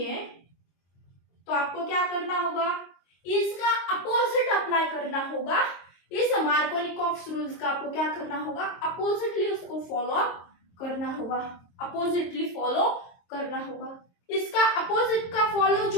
तो आपको क्या करना होगा, इसका अपोजिट अप्लाई करना होगा। इस मार्कोनिकॉफ रूल्स का आपको क्या करना होगा, अपोजिटली उसको फॉलो करना होगा, अपोजिटली फॉलो करना होगा। इसका अपोजिट का फॉलो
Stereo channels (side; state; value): right; late; 22 ms